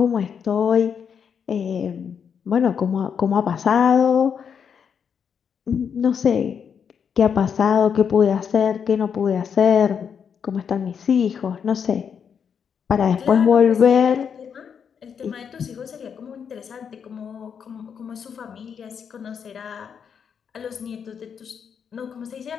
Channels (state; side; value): quieter; right; 7.2 dB